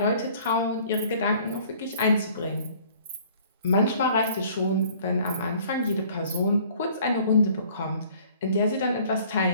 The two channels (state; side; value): inverted; both; correlation -0.54